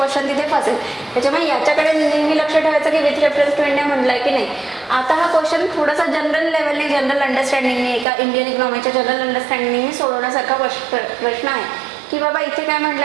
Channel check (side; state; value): left; drops out; at 8.1 s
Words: तिथे फसेल. त्याच्यामुळे याच्याकडे नेहमी लक्ष ठेवायचं की विथ रेफरन्स टू इंडिया म्हटलंय की नाही. आता हा क्वेश्चन थोडासा जनरल लेवलने जनरल अंडरस्टँडिंगने एका इंडियन इकॉनॉमीच्या जनरल अंडरस्टँडिंगने सोडवण्यासारखा प्रश्न आहे की बाबा इथे काय